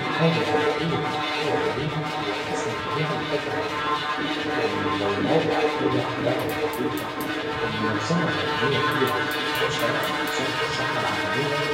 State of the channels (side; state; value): both; identical; correlation 1.00